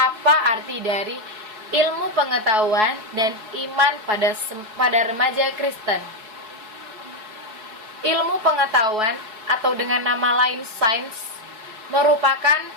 arti dari ilmu pengetahuan dan iman pada remaja Kristen. Ilmu pengetahuan atau dengan nama lain sains merupakan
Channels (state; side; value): late; left; 4.7 ms